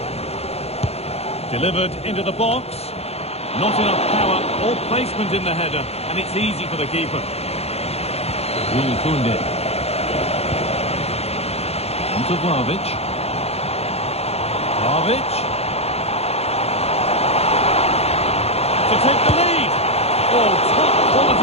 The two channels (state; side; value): late; right; 0.30 ms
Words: Delivered into the box. Not enough power or placement in the header, and it's easy for the keeper. Will Koundé. On to Vlahovic. Vlahovic. To take the lead. Oh, top